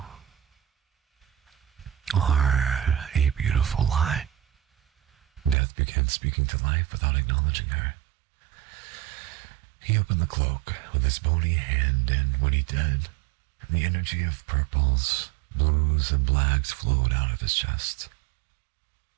are a beautiful lie. Death began speaking to life without acknowledging her. He opened the cloak with his bony hand, and when he did, the energy of purples, blues, and blacks flowed out of his chest.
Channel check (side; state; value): left; drops out; at 5.6 s